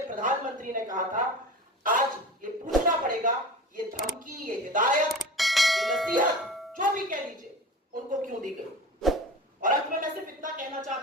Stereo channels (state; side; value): normal; both; correlation 0.34